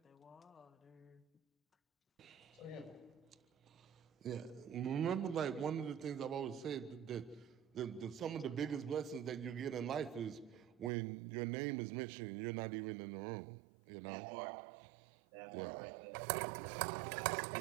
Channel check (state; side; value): drops out; left; at 10.9 s